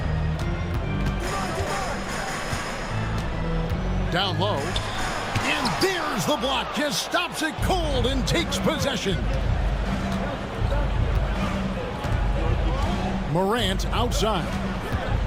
Down low. And there's the block. Just stops it cold and takes possession. Morant outside.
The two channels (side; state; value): both; identical; correlation 1.00